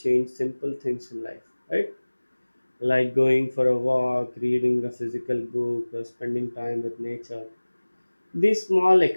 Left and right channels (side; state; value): both; inverted; correlation -1.00